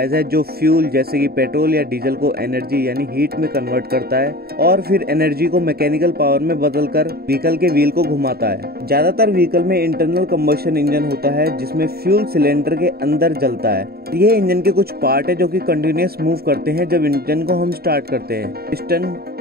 है जो फ्यूल जैसे कि पेट्रोल या डीजल को एनर्जी यानी हीट में कन्वर्ट करता है और फिर एनर्जी को मैकेनिकल पावर में बदलकर व्हीकल के व्हील को घुमाता है। ज्यादातर व्हीकल में इंटरनल कंबशन इंजन होता है जिसमें फ्यूल सिलेंडर के अंदर जलता है। ये इंजन के कुछ पार्ट है जो कि कंटिन्यूअस मूव करते हैं जब इंजन को हम स्टार्ट करते हैं। Piston,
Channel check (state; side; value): late; left; 0.45 ms